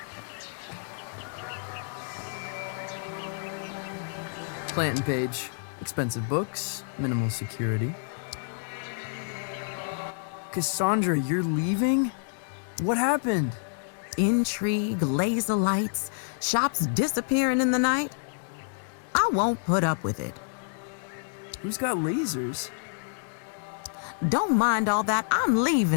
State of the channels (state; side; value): silent; right; digital silence